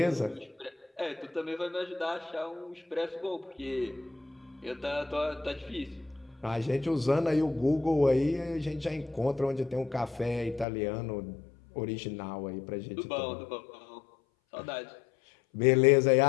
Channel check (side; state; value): right; drops out; at 10.7 s